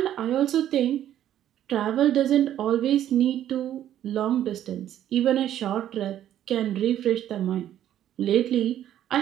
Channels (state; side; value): quieter; left; 11.4 dB